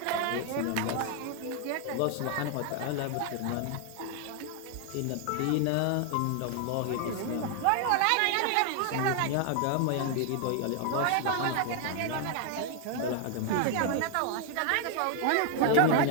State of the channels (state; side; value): different; both; correlation 0.00